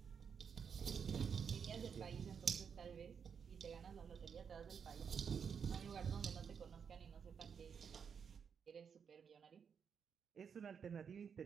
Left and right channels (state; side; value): quieter; left; 6.8 dB